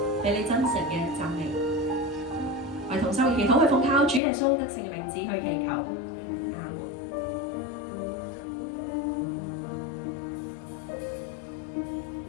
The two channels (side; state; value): right; drops out; at 4.2 s